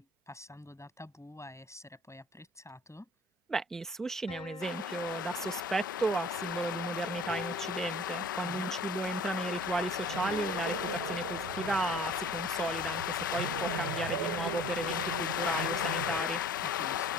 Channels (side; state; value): both; normal; correlation 0.48